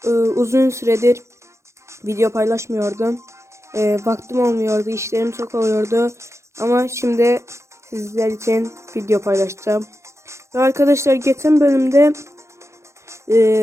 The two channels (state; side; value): late; left; 0.14 ms